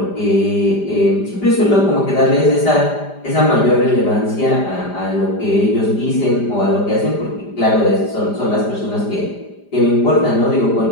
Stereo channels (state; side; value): late; right; 5.0 ms